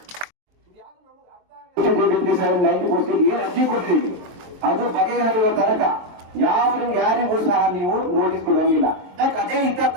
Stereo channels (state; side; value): late; left; 23 ms